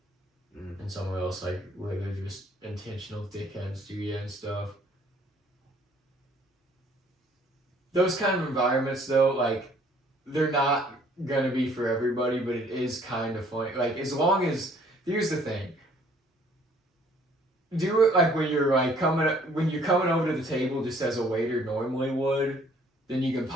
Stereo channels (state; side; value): normal; both; correlation 0.60